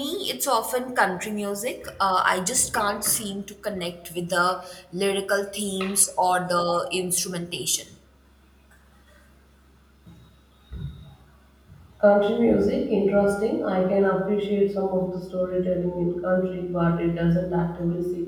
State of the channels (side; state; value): both; identical; correlation 1.00